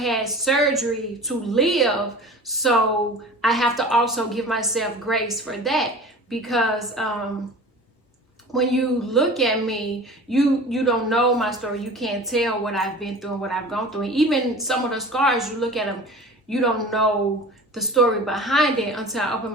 surgery to live, so I have to also give myself grace for that, because when you look at me, you don't know my story. You can't tell what I've been through and what I've gone through. And even some of the scars, you look at them, you don't know the story behind it until I open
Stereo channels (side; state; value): both; normal; correlation 0.39